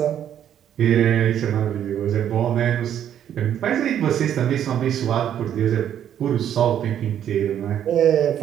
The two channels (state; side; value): quieter; left; 10.0 dB